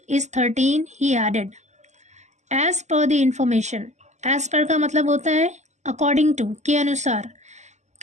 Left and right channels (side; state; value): left; late; 0.33 ms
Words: is 13, he added. As per the information, as per का मतलब होता है according to, के अनुसार.